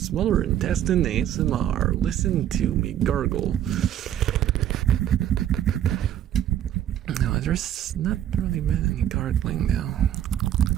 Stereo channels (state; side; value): quieter; left; 11.0 dB